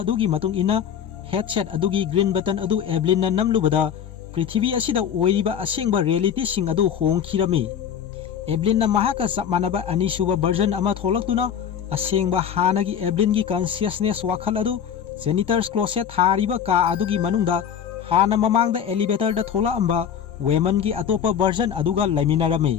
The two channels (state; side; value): quieter; right; 8.5 dB